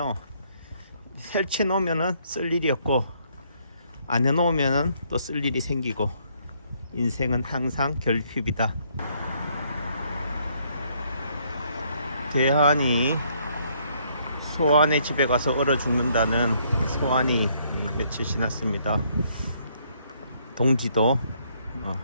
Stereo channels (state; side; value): inverted; both; correlation -0.68